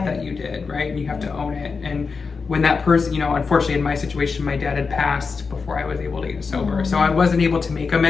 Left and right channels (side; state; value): right; quieter; 4.9 dB